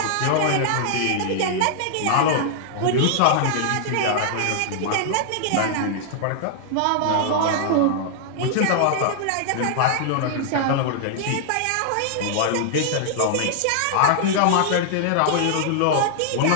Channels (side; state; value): both; different; correlation -0.01